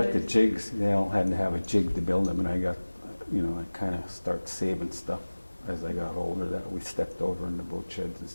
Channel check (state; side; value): inverted; both; correlation -1.00